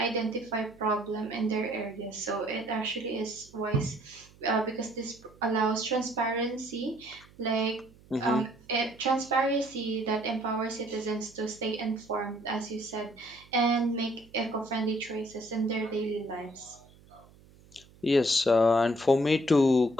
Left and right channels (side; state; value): right; noise; hum, 25 dB below the sound